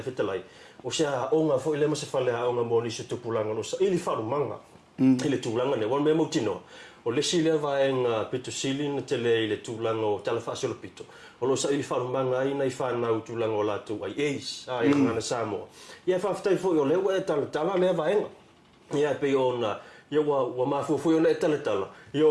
whetalai. O sea onga fui le masawhale a onga mō nisi tupulanga no sa ili wharumanga. Ile tūlanga ne, wan me mautinoa. O le si lea vaenga pito sili na te le ile tūlanga o tala whaasolo pito. O lo sa ili wharumanga ai nei whanau tūlanga o lātou ai eis, ai ngana Samoa. Ia whaftai fo o lewa e tala lea vaenga. Ia pe ona, ia wa mafu fo ona e tala. Ia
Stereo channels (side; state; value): both; identical; correlation 1.00